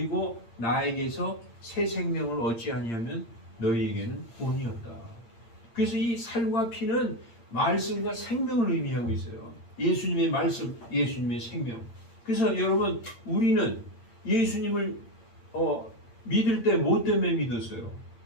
나에게서 새 생명을 얻지 아니하면 너희에게는 구원이 없다. 그래서 이 살과 피는 말씀과 생명을 의미하고 있어요. 예수님의 말씀, 예수님의 생명. 그래서 여러분, 우리는 예수님을 믿을 때 뭐 때문에 믿었어요?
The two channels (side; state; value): right; late; 8.7 ms